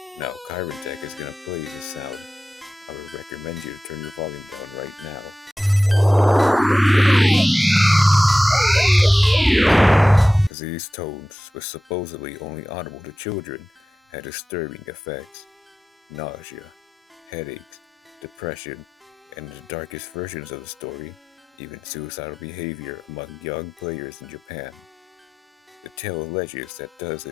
Now, Kyron Tech is gonna play this sound. I would recommend you to turn your volume down right now. These tones, which supposedly only audible to children, had disturbing effects. Nausea, headaches, depression, and in the darkest versions of the story, even suicidal behavior among young players in Japan. The tale alleges that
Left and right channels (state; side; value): normal; both; correlation 0.94